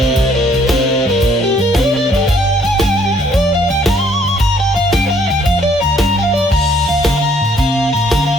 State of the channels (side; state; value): both; normal; correlation 0.64